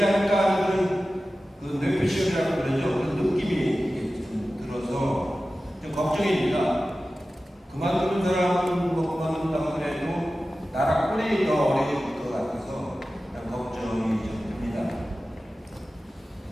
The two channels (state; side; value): normal; both; correlation 0.95